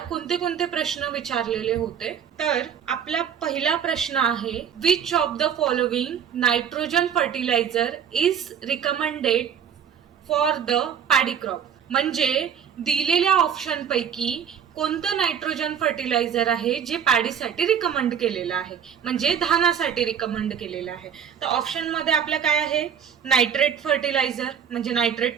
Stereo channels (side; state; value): left; quieter; 8.0 dB